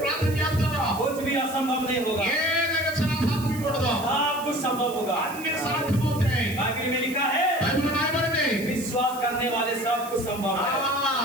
ప్రార్థన చేస్తారో कुछ भी असंभव नहीं होगा, ఏదైనా సాధ్యమవుతుందో सब कुछ संभव होगा। అన్ని సాధ్యమవుతాయి. बाइबल में लिखा है, బైబిల్లో రాయబడింది, विश्वास करने वाले सब कुछ संभव है।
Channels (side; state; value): right; noise; hiss, 15 dB below the sound